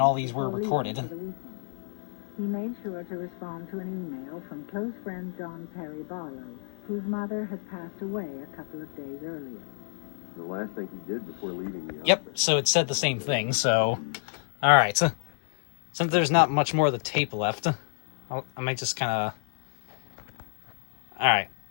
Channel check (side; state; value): right; silent; 59 dB below the other